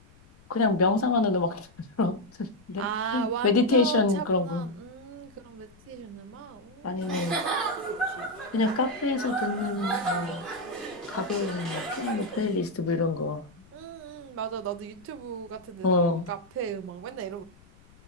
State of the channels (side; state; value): left; noise; rumble, 26 dB below the sound